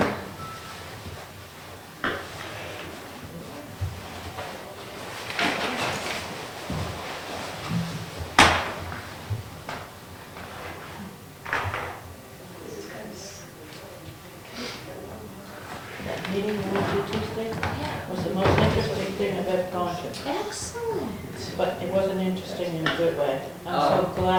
That meeting Wednesday, Tuesday was the most interesting thing I've ever gone to. Excellent. But it wasn't interesting in a good way. I'm so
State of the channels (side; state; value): both; identical; correlation 1.00